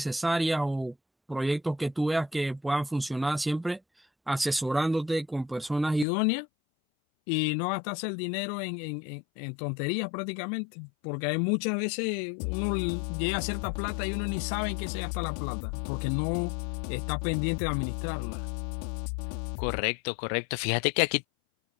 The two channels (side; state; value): right; drops out; at 6.1 s